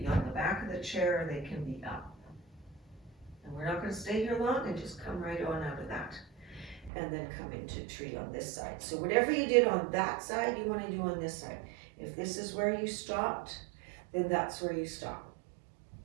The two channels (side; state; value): left; drops out; at 6.9 s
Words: on the back of the chair or they can be up. And we're not going to stay here long, and just come right on out of that. And then come into tree on this side. So whatever you did on that side, you want to do on this side. If this is where you stopped, then that's where you stop.